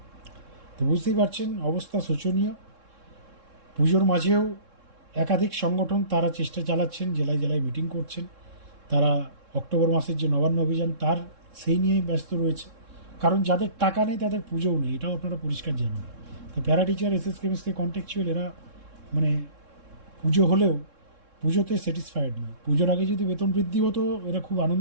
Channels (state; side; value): late; left; 3.7 ms